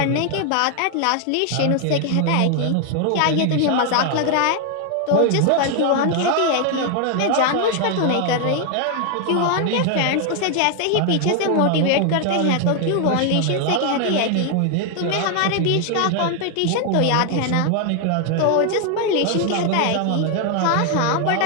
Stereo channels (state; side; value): different; both; correlation 0.00